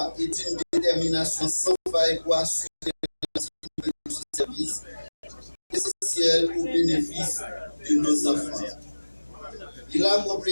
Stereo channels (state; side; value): inverted; both; correlation -1.00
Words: et d'une détermination sans faille pour assurer le service essentiel au bénéfice de nos enfants. Il